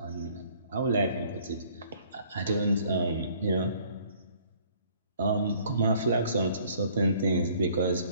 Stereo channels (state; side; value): inverted; both; correlation -0.58